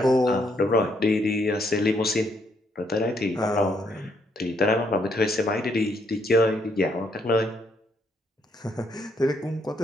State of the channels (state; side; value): normal; both; correlation 0.73